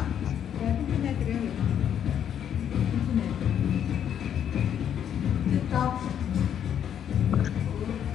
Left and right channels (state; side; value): quieter; right; 9.2 dB